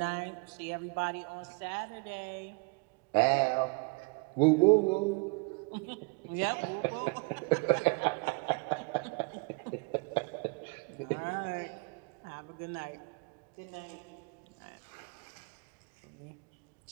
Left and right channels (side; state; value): left; quieter; 31.2 dB